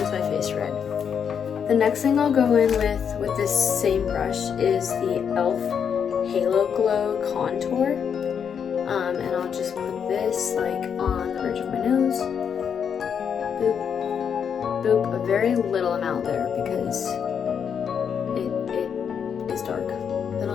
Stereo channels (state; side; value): quieter; right; 7.4 dB